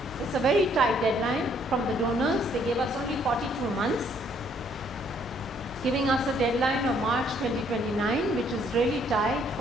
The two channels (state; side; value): normal; both; correlation 0.66